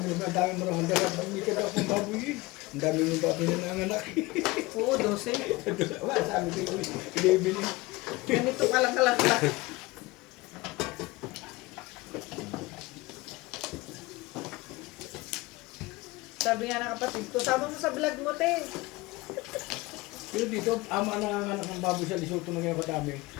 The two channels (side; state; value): right; quieter; 21.8 dB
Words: ang dami mo naman dahil bumili ka daw pang baboy eh. Ang dami mong baboy na nanganak. oo, 12. Wala, sabi ko yun, ilibili. Ganito ka lang kalakla. Sabi nga ng kapatid ko, sama mo sa vlog mo, te. Pero dito, ama na nanganak ng baboy sa Lesotho ng kaya katami.